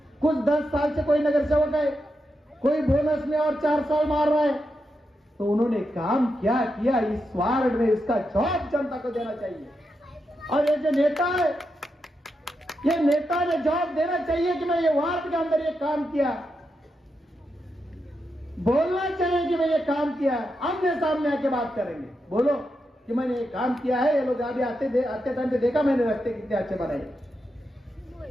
कुछ 10 साल से कोई नगर सेवक है, कोई बोनस में और 4 साल मार रहा है, तो उन्होंने काम क्या किया इस वार्ड में, इसका जवाब जनता को देना चाहिए। और ये जो नेता है, ये नेता ने जवाब देना चाहिए कि मैं ये वार्ड के अंदर ये काम किया। बोलना चाहिए कि मैं ये काम किया है, आमने सामने आके बात करेंगे, बोलो कि मैंने ये काम किया है। ये लोग अभी आते टाइम पे देखा मैंने, रास्ते कितने अच्छे बनाए।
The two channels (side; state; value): both; normal; correlation 0.86